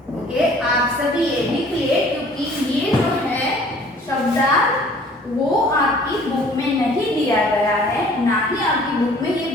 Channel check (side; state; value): both; normal; correlation 0.53